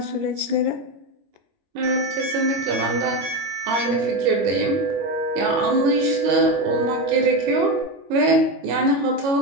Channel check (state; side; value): late; left; 22 ms